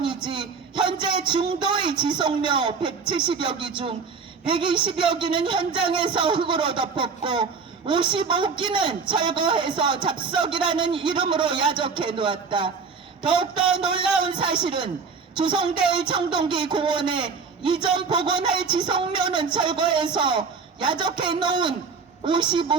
현재 중도의 지속료 170여 기 중 120여 기는 현장에서 흙으로 덮었고 55기는 철거해서 잡석이라는 이름으로 야적해 놓았다. 더욱더 놀라운 사실은 조성될 청동기 공원에 이전 복원할 지속료는 철거해서 야적해 놓은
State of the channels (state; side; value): quieter; left; 5.1 dB